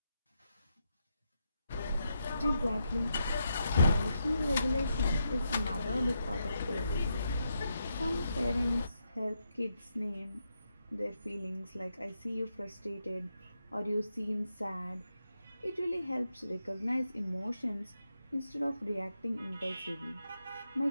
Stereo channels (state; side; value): inverted; both; correlation -0.82